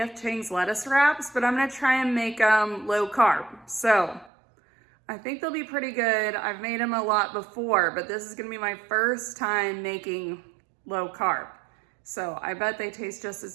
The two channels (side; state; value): left; drops out; at 4.3 s